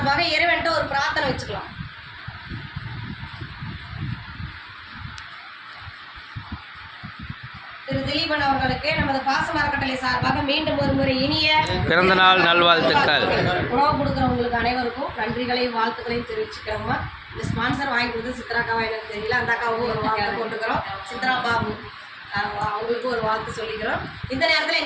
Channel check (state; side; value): identical; both; correlation 1.00